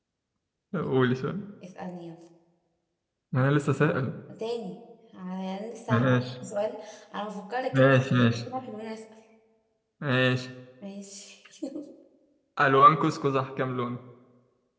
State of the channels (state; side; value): identical; both; correlation 1.00